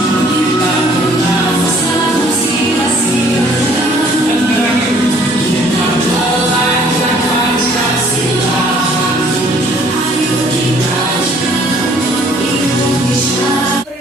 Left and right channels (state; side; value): normal; both; correlation 0.58